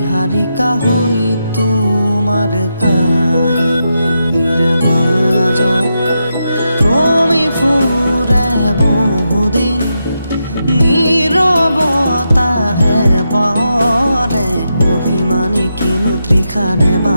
হৈ তোমাৰ কাহিনীৰ মাজত ক্ৰমি ফুৰে বহুদিন নীৰৱতাহে পৰে অভিমানী কিনো তৃষাৰে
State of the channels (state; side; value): inverted; both; correlation -0.85